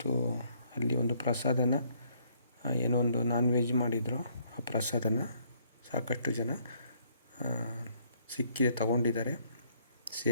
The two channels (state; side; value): inverted; both; correlation -0.67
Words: ಅಲ್ಲಿ ಒಂದು ಪ್ರಸಾದನ ಏನೋ ಒಂದು ನಾನ್ ವೆಜ್ ಮಾಡಿದರು. ಆ ಪ್ರಸಾದನ ಸಾಕಷ್ಟು ಜನ ಸಿಕ್ಕಿದೆ ತಗೊಂಡಿದ್ದಾರೆ,